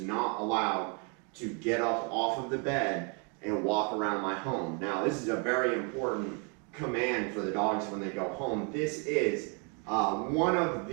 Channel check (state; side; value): quieter; left; 36.4 dB